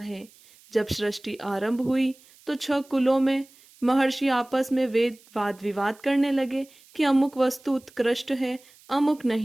जब सृष्टि आरंभ हुई तो 6 कुलों में महर्षि आपस में वाद विवाद करने लगे कि अमुक वस्तु उत्कृष्ट है, अमुक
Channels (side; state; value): right; noise; hiss, 27 dB below the sound